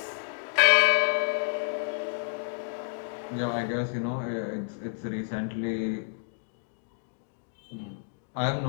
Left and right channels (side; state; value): right; silent; digital silence